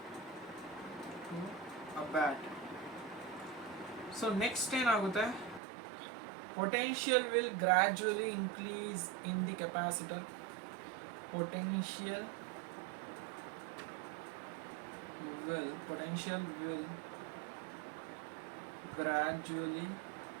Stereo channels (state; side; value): drops out; left; at 5.6 s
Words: a battery. So next ಏನಾಗುತ್ತೆ potential will gradually increase in the capacitor. Potential potential